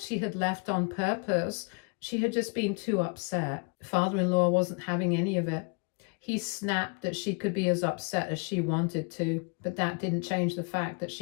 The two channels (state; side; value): quieter; right; 36.1 dB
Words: had left on purpose. She had just been too upset. Father-in-law wasn't having any of it. He snapped that she could be as upset as she wanted to, but that didn't change the fact that